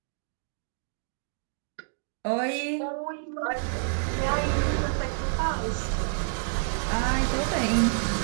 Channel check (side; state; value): left; silent; digital silence